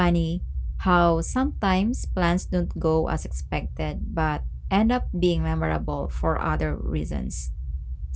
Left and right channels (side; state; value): both; identical; correlation 1.00